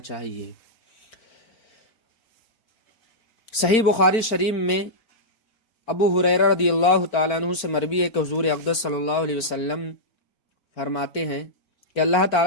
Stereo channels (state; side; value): late; right; 4.4 ms